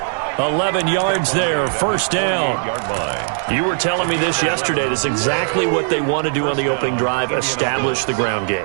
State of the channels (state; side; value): silent; left; 67 dB below the other